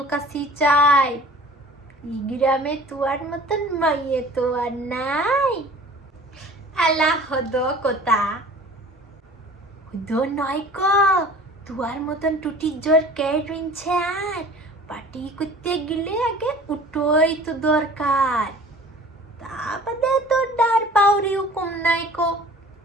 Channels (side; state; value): both; normal; correlation 0.45